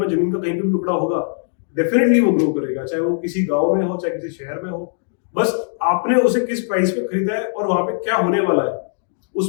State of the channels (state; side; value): silent; right; digital silence